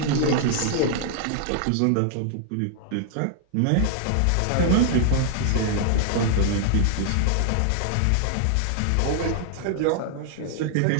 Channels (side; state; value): both; different; correlation 0.00